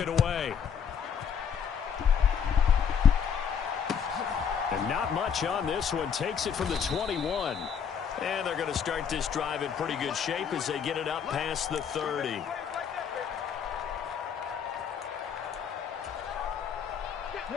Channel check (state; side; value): quieter; right; 7.4 dB